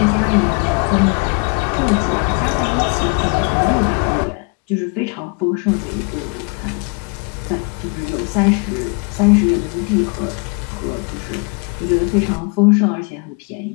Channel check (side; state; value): right; quieter; 34.0 dB